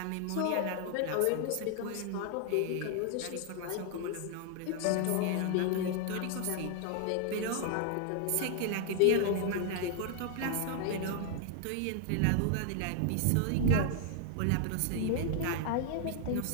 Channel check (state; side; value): different; both; correlation 0.00